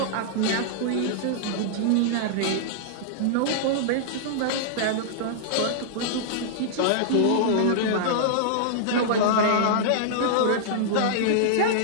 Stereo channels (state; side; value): different; both; correlation -0.02